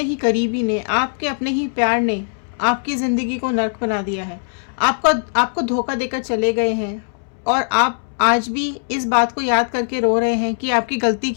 ही करीबी ने, आपके अपने ही प्यार ने आपकी ज़िंदगी को नर्क बना दिया है? आपको आपको धोखा देकर चले गए हैं और आप आज भी इस बात को याद करके रो रहे हैं कि आपकी गलती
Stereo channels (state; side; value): silent; right; 66 dB below the other